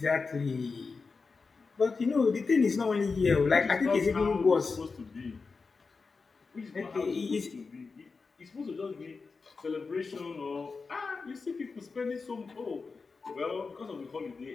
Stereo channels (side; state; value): right; quieter; 4.5 dB